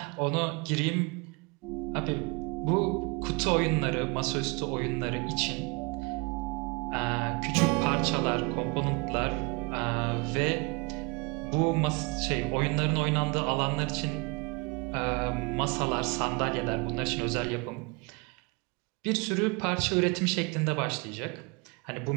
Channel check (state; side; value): quieter; left; 29.5 dB